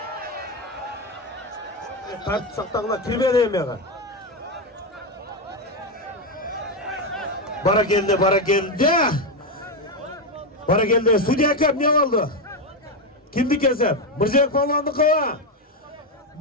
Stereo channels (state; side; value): normal; both; correlation 0.09